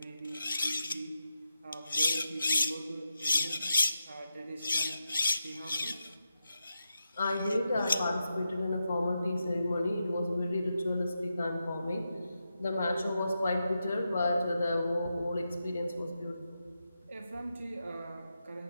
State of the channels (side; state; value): both; inverted; correlation -0.87